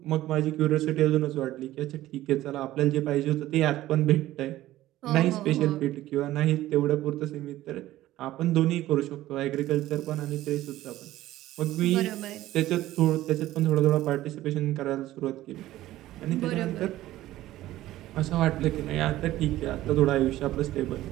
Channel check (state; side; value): quieter; left; 15.2 dB